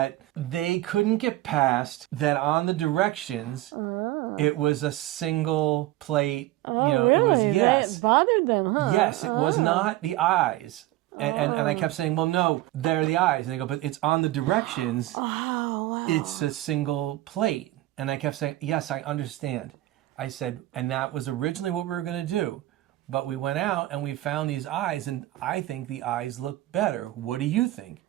they couldn't get past that on the directions. It was a single plate. Oh, you know, really? it was yes. That bothered them, huh? Yes, it was not the eyes. And I kept saying, well, no, they're the eyes. And they go, but it's on the directions. Oh, wow. It's a single plate. And I kept saying, yes, I understand. I said, and that was originally what we were going to do. But we went out and we found these eyes, and I think the eyes look better. What do you think?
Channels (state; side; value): quieter; left; 16.5 dB